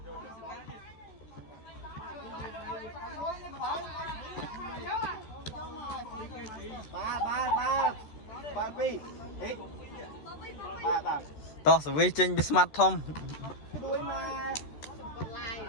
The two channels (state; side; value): late; right; 13 ms